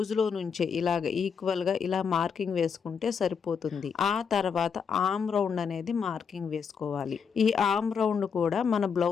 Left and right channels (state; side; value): quieter; right; 6.4 dB